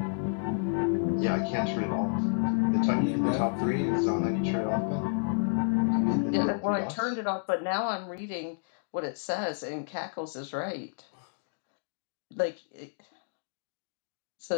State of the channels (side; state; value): right; silent; digital silence